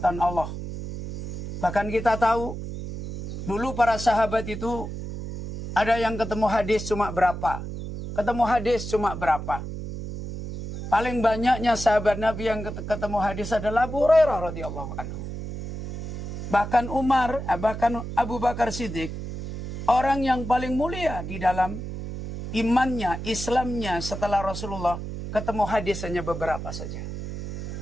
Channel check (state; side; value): noise; right; hum, 7 dB below the sound